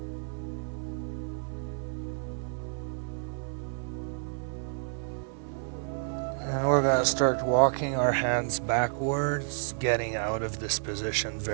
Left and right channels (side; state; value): left; silent; 56 dB below the other